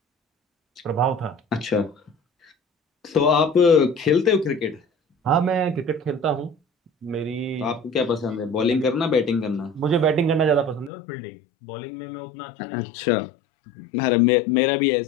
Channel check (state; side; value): drops out; right; at 10.9 s